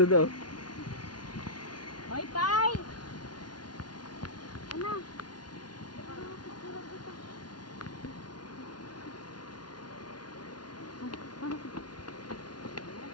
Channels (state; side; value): late; right; 0.70 ms